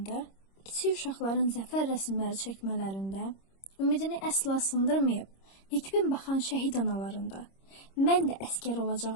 kiçik uşaqların zəfər rəsmləri çəkmələrində, ümidini əsla sındırmayıb, nikbin baxan şəhid analarında, mən də əskər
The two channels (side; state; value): right; late; 26 ms